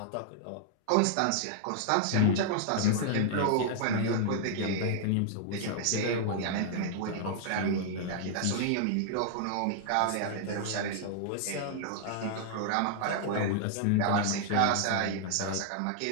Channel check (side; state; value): both; different; correlation -0.01